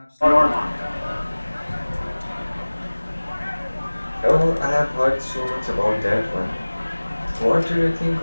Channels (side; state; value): both; inverted; correlation -1.00